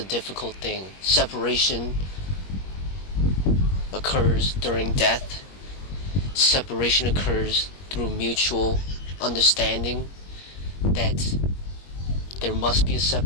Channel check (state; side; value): late; right; 21 ms